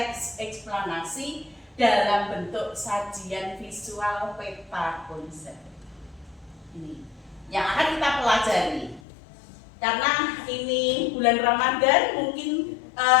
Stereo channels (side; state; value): right; drops out; at 9.0 s